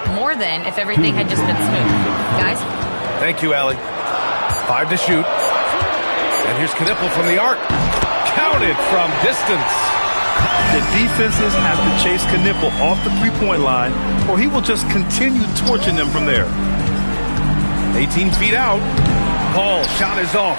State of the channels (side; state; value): both; inverted; correlation -1.00